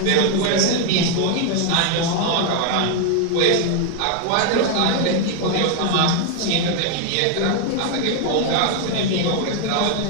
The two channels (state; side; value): different; both; correlation 0.01